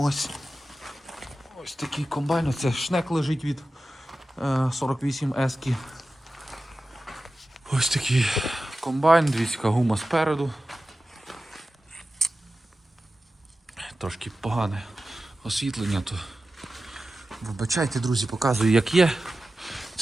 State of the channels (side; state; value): both; normal; correlation 0.94